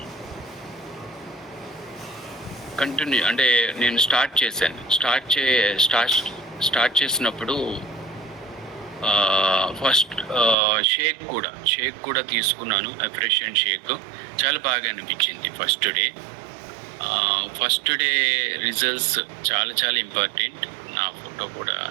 కంటిన్యూ, అంటే నేను స్టార్ట్ చేశాను. స్టార్ట్ చేసినప్పుడు ఫస్ట్ షేక్ కూడా తీసుకున్నాను, ఎఫ్రెషియన్ షేక్. చాలా బాగా అనిపించింది ఫస్ట్ డే రిజల్ట్స్ చాలా చాలా ఇంపార్టెంట్. నా ఫోటో కూడా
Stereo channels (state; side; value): drops out; left; at 10.6 s